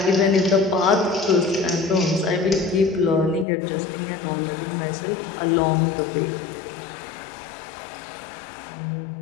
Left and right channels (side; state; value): right; drops out; at 3.5 s